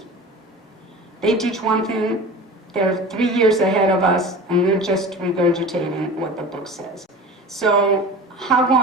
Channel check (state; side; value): normal; both; correlation 0.36